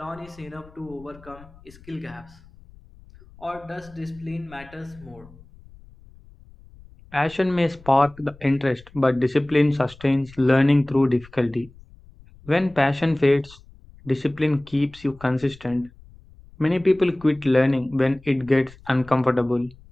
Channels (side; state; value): left; noise; rumble, 23 dB below the sound